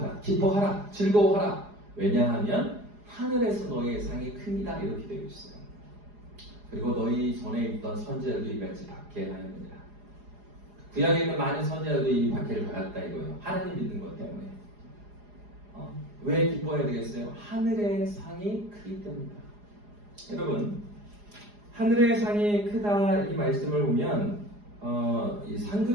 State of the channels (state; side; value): late; left; 4.8 ms